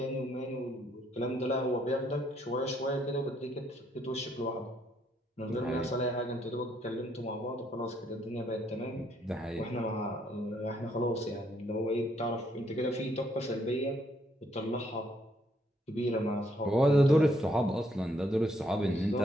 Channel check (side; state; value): both; normal; correlation 0.71